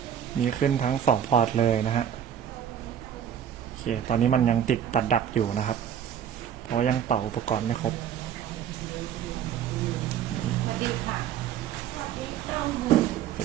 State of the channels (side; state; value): left; quieter; 9.3 dB